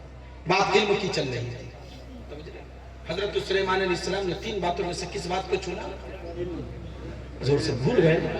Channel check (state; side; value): identical; both; correlation 1.00